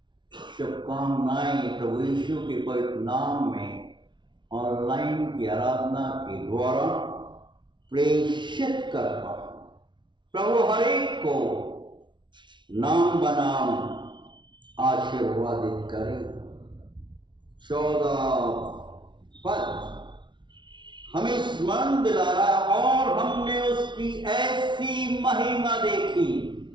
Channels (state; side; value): late; left; 0.23 ms